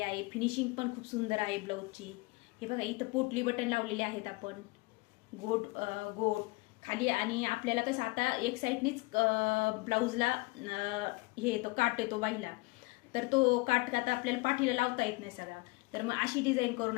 आहे. फिनिशिंग पण खूप सुंदर आहे ब्लाऊजची. हे बघा, इथं पोटली बटन लावलेले आहेत आपण, गोट गोट खाली. आणि आपल्याला कसं आता एक साईडनीच ब्लाऊजला हे येतो, काट येतो बाईला, तर तो काट आता आपल्याला पाठीला लावता येत नाही सगळा. तर मग अशी डिझाईन करून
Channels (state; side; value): quieter; right; 24.9 dB